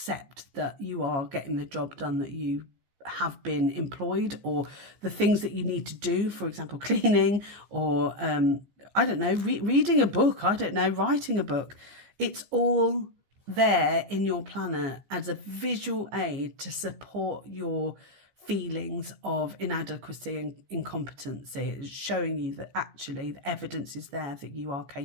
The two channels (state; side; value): late; left; 15 ms